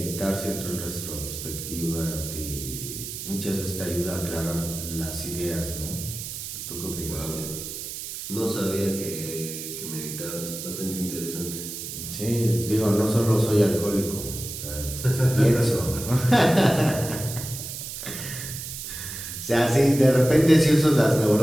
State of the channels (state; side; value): noise; right; hiss, 8 dB below the sound